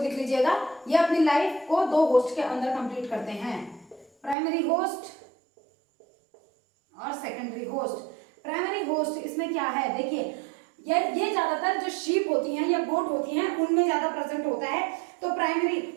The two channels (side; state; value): left; drops out; at 4.4 s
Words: लीजिएगा, ये अपनी लाइफ को दो होस्ट के अंदर कंप्लीट करते हैं, प्राइमरी होस्ट और सेकेंडरी होस्ट। प्राइमरी होस्ट इसमें क्या है, देखिए ये ज्यादातर जो शीप होती हैं या गोट होती हैं उनमें ज्यादा प्रेजेंट होता है। तो प्राइमरी